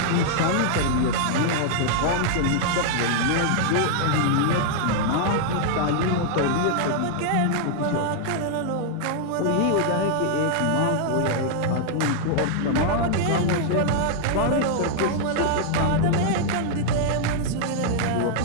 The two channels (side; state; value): both; different; correlation -0.01